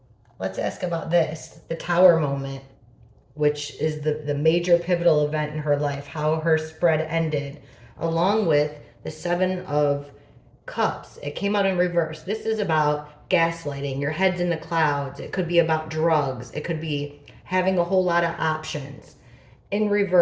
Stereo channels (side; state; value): both; identical; correlation 1.00